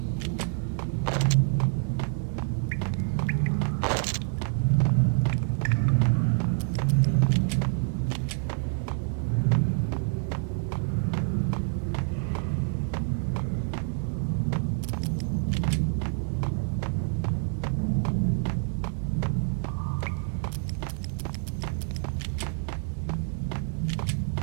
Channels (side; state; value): left; silent; 60 dB below the other